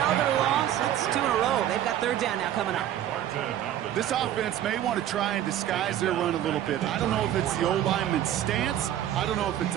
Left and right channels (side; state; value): left; quieter; 11.6 dB